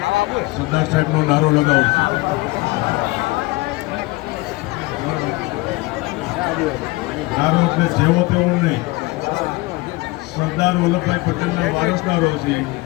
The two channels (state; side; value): quieter; right; 22.1 dB